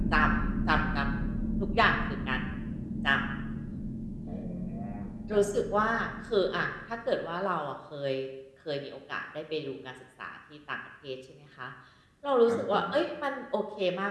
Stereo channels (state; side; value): identical; both; correlation 1.00